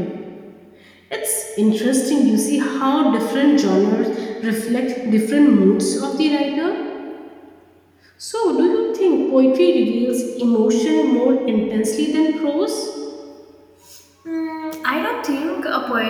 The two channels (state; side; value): identical; both; correlation 1.00